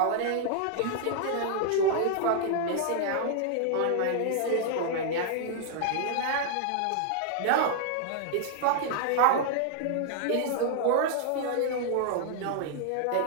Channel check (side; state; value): both; different; correlation -0.01